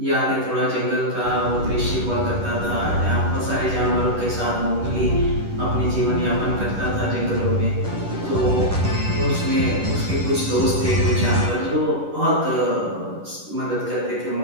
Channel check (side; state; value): left; late; 10 ms